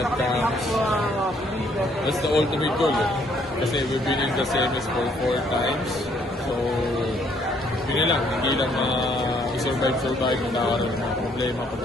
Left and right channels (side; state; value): both; normal; correlation 0.66